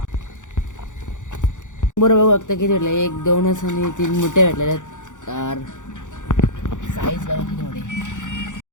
बरोबर बघता किती भेटलं. 1 2 आणि 3 मोठे भेटलेले. साईज बघा किती मोठे.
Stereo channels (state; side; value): late; right; 0.86 ms